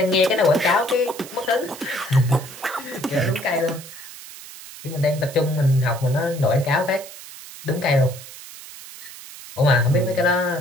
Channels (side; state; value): right; noise; hiss, 15 dB below the sound